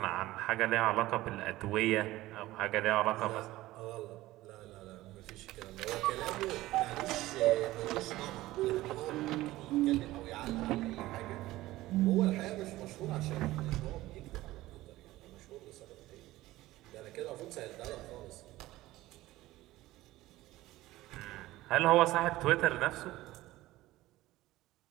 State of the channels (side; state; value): left; quieter; 17.1 dB